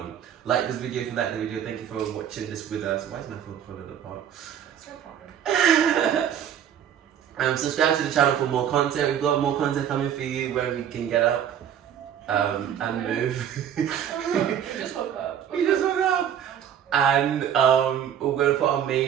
Like this video if you like the video. Thank you for watching this with us. Why is my phone falling apart? It's no problem. Subscribe to the channel for more content. We've got more content coming for you where we can get up and move. We just woke up. We just woke up. And we're going to put our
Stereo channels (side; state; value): left; quieter; 9.4 dB